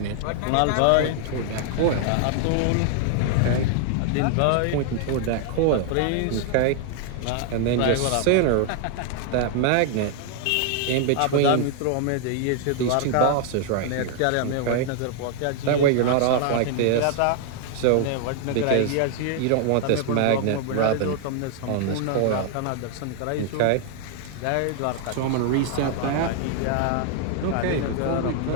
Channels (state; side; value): different; both; correlation 0.00